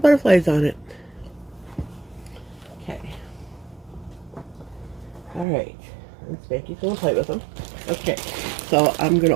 on it. Okay. Alright. And Spanky's going to play with them. Okay. So I'm going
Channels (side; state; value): left; drops out; at 5.5 s